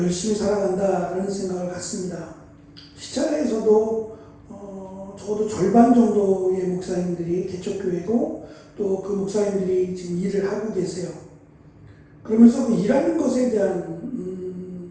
살아간다라는 생각을 갖습니다. 시찰회에서도 적어도 절반 정도의 목사님들이 개척교회고, 또 그 목사님들이 지금 일을 하고 계세요. 그러면서 그 일하는 것에 대한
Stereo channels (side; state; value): both; identical; correlation 1.00